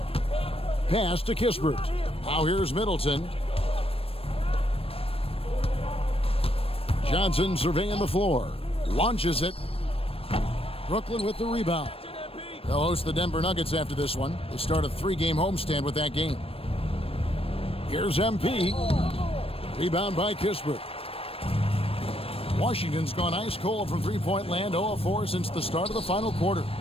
Pass to Kispert. Now here's Middleton. Johnson surveying the floor. Launches it. Brooklyn with the rebound. They'll host the Denver Nuggets after this one. They start a 3-game homestand with that game. Here's MP. Rebound by Kispert. Washington's gone ice cold from three-point land, 0 of 4 since the start of the final quarter.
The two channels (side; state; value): right; late; 0.28 ms